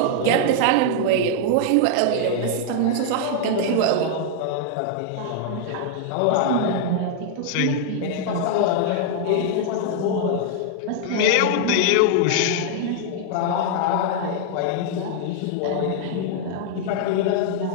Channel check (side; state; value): both; different; correlation -0.01